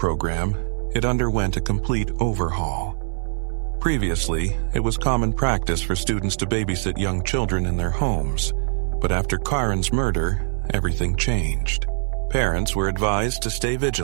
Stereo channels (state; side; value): silent; left; 61 dB below the other